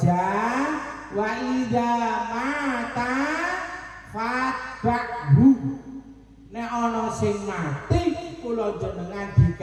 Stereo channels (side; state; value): both; identical; correlation 1.00